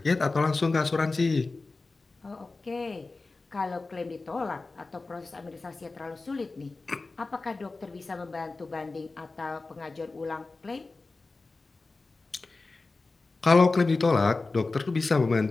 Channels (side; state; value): right; quieter; 3.6 dB